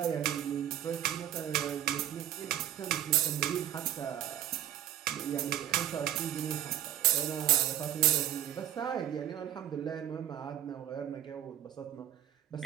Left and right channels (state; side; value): quieter; left; 11.6 dB